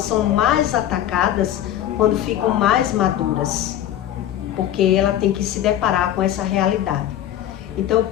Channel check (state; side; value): quieter; right; 11.7 dB